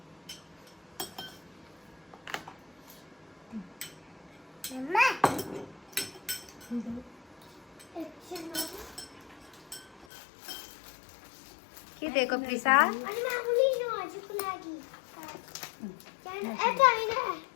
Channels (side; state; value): right; drops out; at 10.1 s